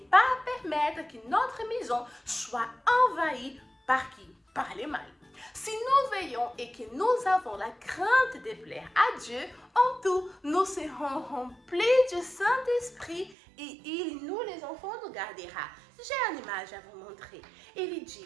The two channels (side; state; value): left; drops out; at 13.4 s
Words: pas permettre que notre maison soit envahie par qui? Par les mal. Si nous veillons et que nous avons la crainte de plaire à Dieu, en tout, nous serons remplis du Saint-Esprit et il, nous les enfants, nous gardera. J'ai une image à vous montrer. Il